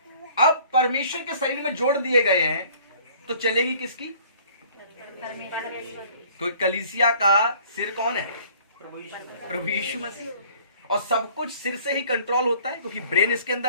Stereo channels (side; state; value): both; inverted; correlation -0.54